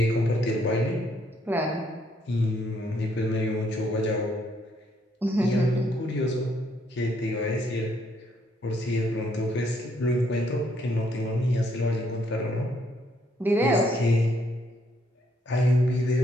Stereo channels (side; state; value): both; normal; correlation 0.71